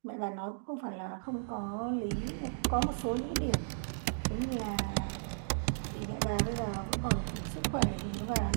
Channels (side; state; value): left; silent; digital silence